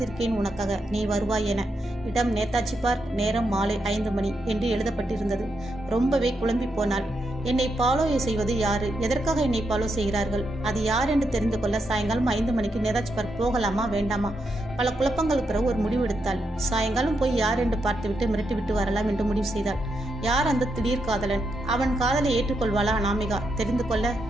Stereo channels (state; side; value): normal; both; correlation 0.82